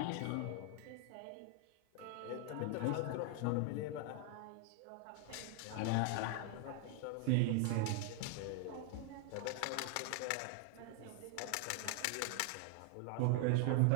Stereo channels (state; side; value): different; both; correlation 0.00